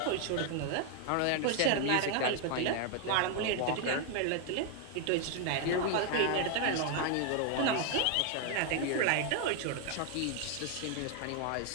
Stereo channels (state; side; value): different; both; correlation 0.01